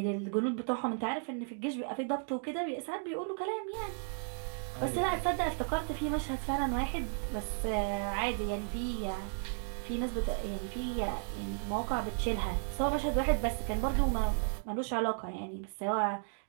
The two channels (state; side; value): silent; left; 55 dB below the other